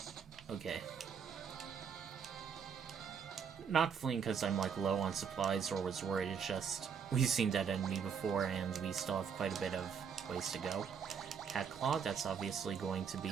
Okay. Not fleeing because I'm like low on supplies or was worried, it's just we've seen that enemy before and we still have quite a bit of ways to go. Cat Claw, that's obviously going to be...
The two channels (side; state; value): left; quieter; 6.9 dB